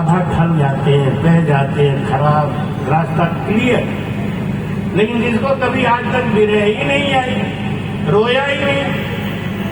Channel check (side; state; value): both; identical; correlation 1.00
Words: ढल जाते हैं, बह जाते हैं, खराब रास्ता क्लियर। लेकिन जिसको कभी आज तक विरह ही नहीं आई, रोया ही नहीं,